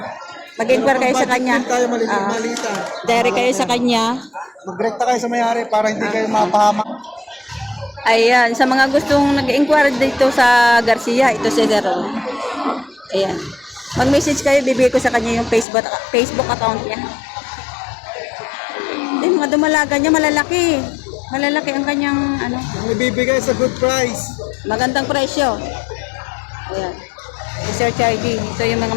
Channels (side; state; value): right; drops out; at 15.7 s